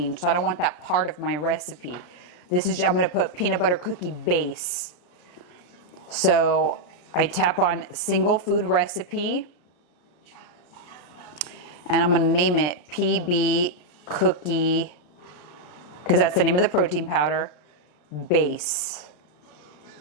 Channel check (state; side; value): late; right; 34 ms